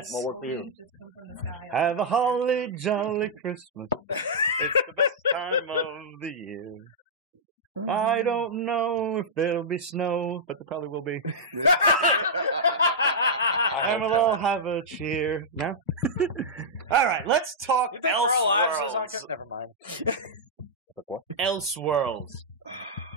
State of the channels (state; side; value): normal; both; correlation -0.10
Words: More work for you. Have a holly jolly Christmas. It's the best time of the year. I don't know if there'll be snow, but there probably will be. And we'll all have a cheer. No? All right, let's talk Elseworlds. Never mind. Like what? Elseworlds.